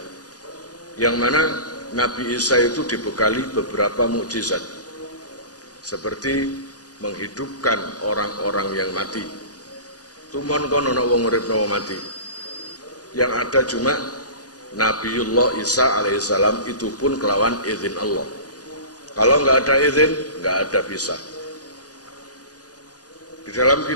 yang mana Nabi Isa itu dibekali beberapa mukjizat seperti menghidupkan orang-orang yang mati. Tumon kono ana wong uripno mati. Yang ada cuma Nabiullah Isa alaihissalam, itu pun kelawan izin Allah. Kalau nggak ada izin, nggak ada bisa. Di dalam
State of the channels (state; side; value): late; right; 0.68 ms